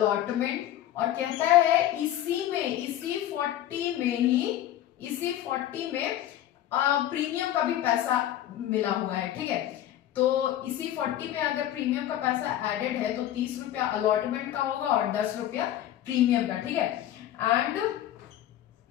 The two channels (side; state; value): right; quieter; 12.3 dB